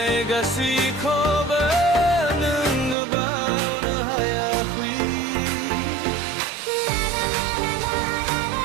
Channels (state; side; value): drops out; left; at 3.0 s